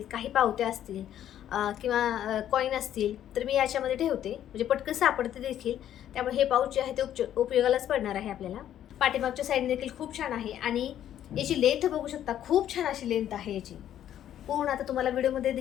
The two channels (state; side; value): quieter; right; 11.0 dB